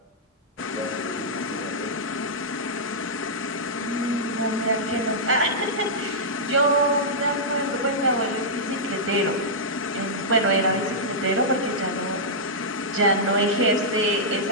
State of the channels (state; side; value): normal; both; correlation -0.11